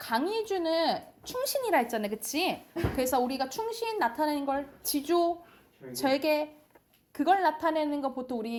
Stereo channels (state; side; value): identical; both; correlation 1.00